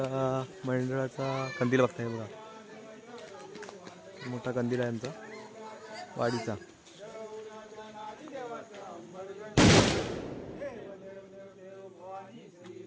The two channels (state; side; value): identical; both; correlation 1.00